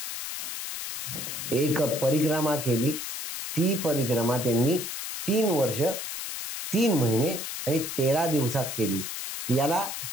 एक परिक्रमा केली. ती परिक्रमा त्यांनी 3 वर्ष 3 महिने आणि 13 दिवसात केली. याला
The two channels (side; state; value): left; noise; hiss, 6 dB below the sound